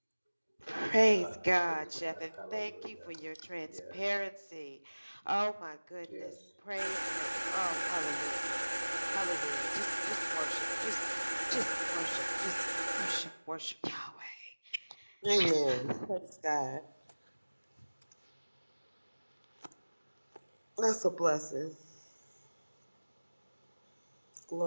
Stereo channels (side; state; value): both; inverted; correlation -1.00